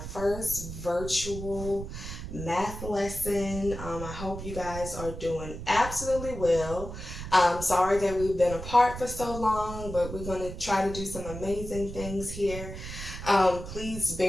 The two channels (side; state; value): right; noise; rumble, 9 dB below the sound